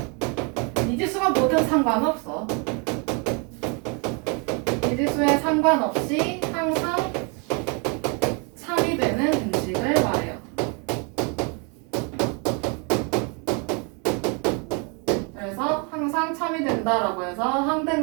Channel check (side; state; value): left; quieter; 34.3 dB